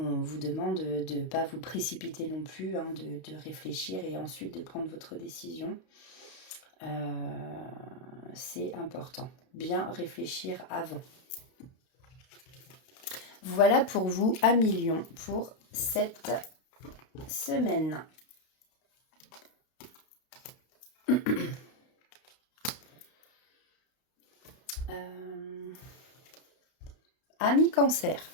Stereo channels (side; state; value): right; late; 32 ms